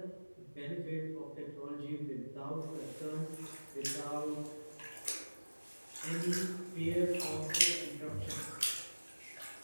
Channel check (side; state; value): both; inverted; correlation -1.00